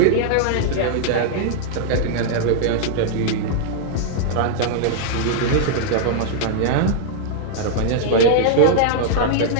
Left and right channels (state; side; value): different; both; correlation -0.01